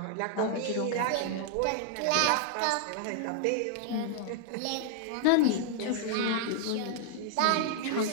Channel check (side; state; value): both; different; correlation -0.01